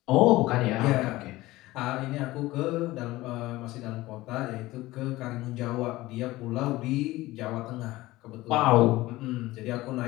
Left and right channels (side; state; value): right; quieter; 18.3 dB